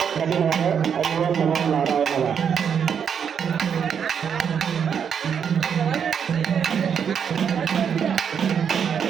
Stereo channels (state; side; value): quieter; left; 7.5 dB